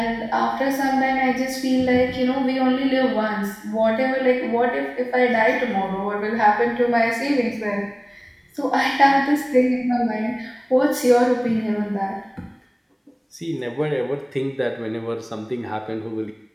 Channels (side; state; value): both; identical; correlation 1.00